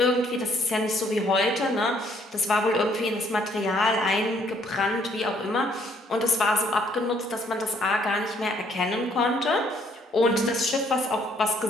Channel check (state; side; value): normal; both; correlation 0.65